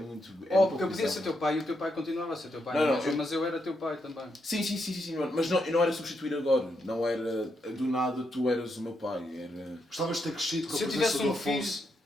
Oh, porque eu podia ser teu pai e o teu pai continuava a ser teu pai. Não, mas eu era teu pai também. Sim, mas eu não era substituir agora. Não era do nada tu eras o meu pai. Era... Gostavas de ter crescido com a Se eu presença tivesse do um filho Afonso.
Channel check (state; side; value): normal; both; correlation 0.81